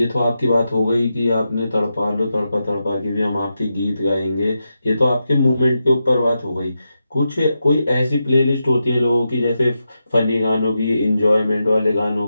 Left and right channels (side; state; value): both; inverted; correlation -0.88